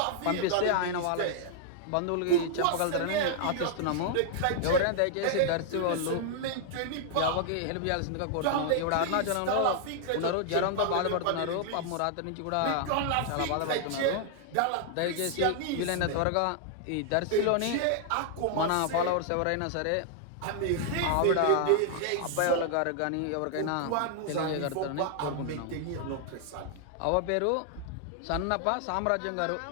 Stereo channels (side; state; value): both; different; correlation 0.00